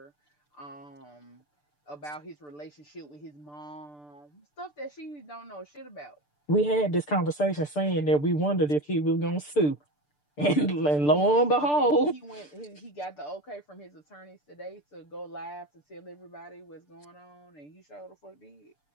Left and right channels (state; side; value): late; right; 6.8 ms